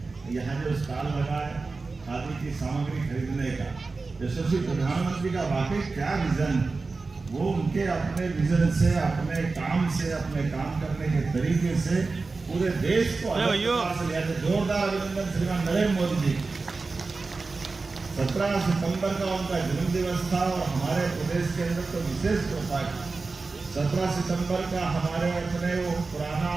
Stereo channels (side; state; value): left; quieter; 3.9 dB